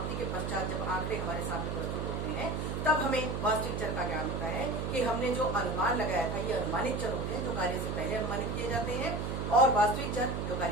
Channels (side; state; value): right; noise; hum, 2 dB below the sound